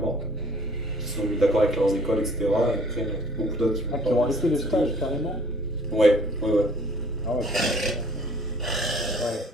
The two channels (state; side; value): normal; both; correlation 0.55